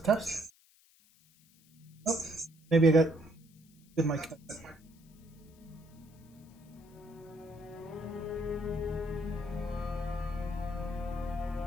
test. Oh, maybe I got good mic.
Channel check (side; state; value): left; noise; hiss, 29 dB below the sound